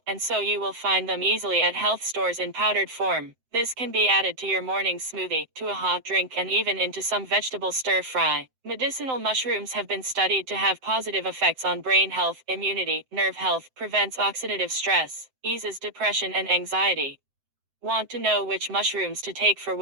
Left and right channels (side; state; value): left; late; 7.8 ms